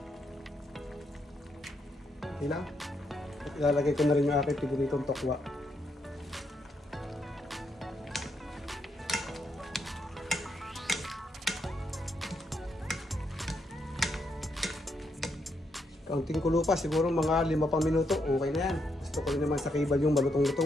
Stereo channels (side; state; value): both; normal; correlation 0.78